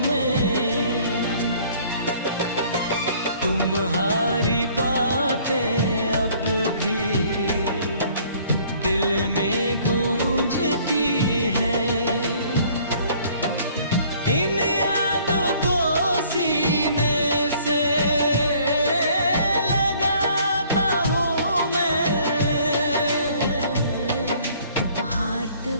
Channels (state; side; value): inverted; both; correlation -0.58